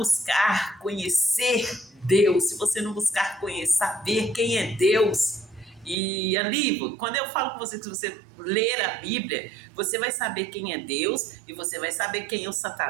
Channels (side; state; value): left; drops out; at 6.0 s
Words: conhecer Deus, se você não buscar saber quem é Deus, e ali, quando eu falo com você que se você ler a Bíblia, você vai saber quem é Deus, e você vai saber quem é o